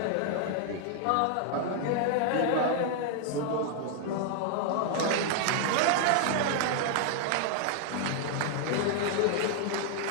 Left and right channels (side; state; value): both; different; correlation 0.00